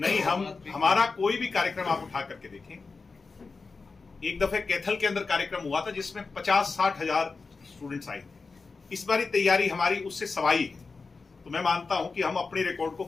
हमारा कोई भी कार्यक्रम आप उठा करके देखें। एक दफे कैथल के अंदर कार्यक्रम हुआ था जिसमें 50-60 हजार स्टूडेंट्स आए थे। इस बारी तैयारी हमारी उससे सवाई है। तो मैं मानता हूं कि हम अपने रिकॉर्ड को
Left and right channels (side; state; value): right; quieter; 4.3 dB